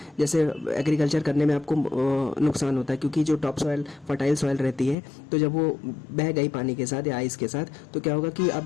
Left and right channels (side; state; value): right; drops out; at 5.0 s